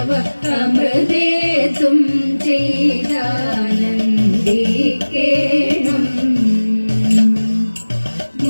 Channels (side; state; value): both; inverted; correlation -1.00